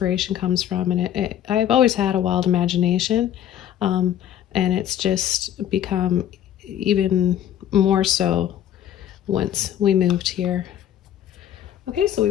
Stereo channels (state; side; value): quieter; right; 10.8 dB